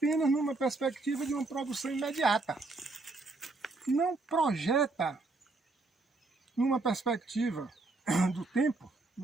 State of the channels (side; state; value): left; quieter; 3.4 dB